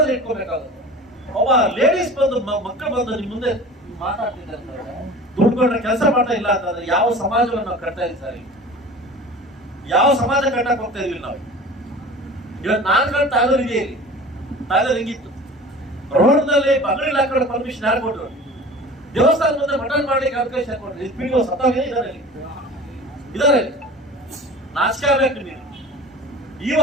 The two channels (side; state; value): both; normal; correlation 0.39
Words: ಇಟ್ಕೋಬೇಕಾಗುತ್ತೆ. ಒಬ್ಬ ಲೇಡೀಸ್ ಬಂದು ಮಕ್ಕಳು ಬಂದು ನಿಮ್ ಮುಂದೆ ಮಾತಾಡ್ತಿದ್ದಾರೆ ಅಂತಂದ್ರೆ, ದುಡ್ಡು ಕೊಟ್ಟರೆ ಕೆಲಸ ಮಾಡ್ತಾ ಇಲ್ಲ ಅಂತಂದ್ರೆ ಯಾವ ಸಮಾಜವನ್ನು ನಾವು ಕಟ್ತಾ ಇದ್ದೀವಿ ಸರ್? ಯಾವ ಸಮಾಜ ಕಟ್ಟಕ್ ಹೋಗ್ತಾ ಇದೀವಿ ನಾವು? ಇವತ್ತು ನಾನು ತಾಯ್ಲೂರು ಇದೆ, ಇಲ್ಲಿ ತಾಯ್ಲೂರು ಹಿಂಗಿತ್ತು. ರೋಡ್ನಲ್ಲಿ ಬಂಗಡಿ ಹಾಕೊಂಡು ಪರ್ಮಿಷನ್ ಯಾರು ಕೊಟ್ಟರು? ದೇವಸ್ಥಾನ ಮುಂದೆ ಮಟನ್ ಮಾಡ್ಲಿಕ್ಕೆ ಅವಕಾಶ ಕೊಟ್ಟರು. ಇದು ಪಿಡಿಒ ಸತ್ತಾಗ ಇದಾರೆ. ನಾಚಿಕೆ ಆಗ್ಬೇಕು ನೀವು.